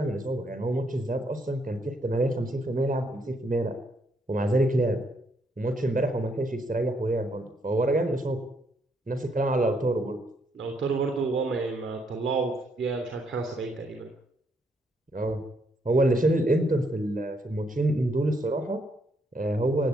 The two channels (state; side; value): normal; both; correlation 0.73